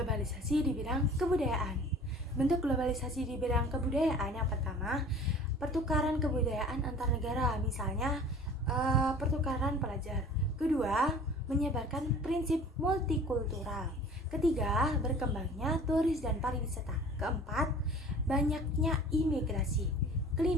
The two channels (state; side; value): normal; both; correlation 0.45